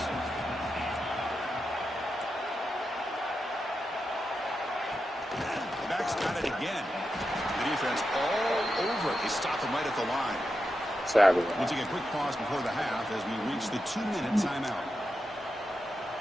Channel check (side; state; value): both; normal; correlation 0.88